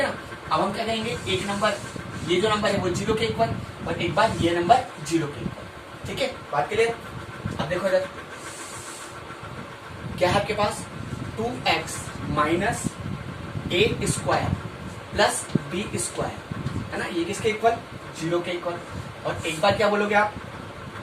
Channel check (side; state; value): both; identical; correlation 1.00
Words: ना, अब हम क्या कहेंगे, एक नंबर ये जो नंबर है वो 0 के इक्वल और एक बार ये नंबर 0 के इक्वल। ठीक है, बात क्लियर। अब देखो इधर क्या है आपके पास 2x minus A square plus B square, है ना, ये किसके इक्वल 0 के इक्वल। और एक बार क्या बोलोगे आप